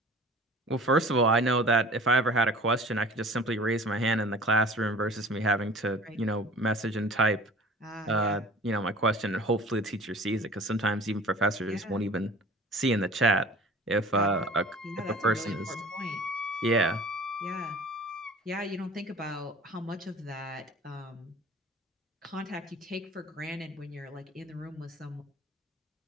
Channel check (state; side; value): normal; both; correlation 0.44